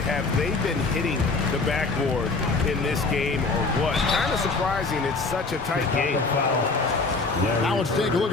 have they been hitting the backboard in this game or what? Kind of surprising. It's such a tight game. Now let's take a look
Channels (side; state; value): right; quieter; 3.8 dB